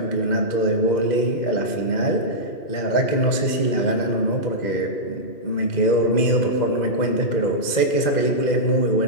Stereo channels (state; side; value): late; right; 2.1 ms